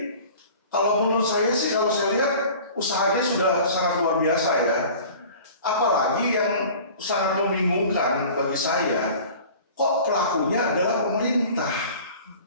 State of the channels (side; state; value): both; inverted; correlation -0.43